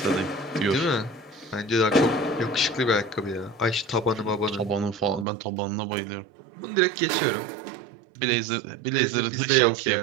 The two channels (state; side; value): drops out; left; at 5.2 s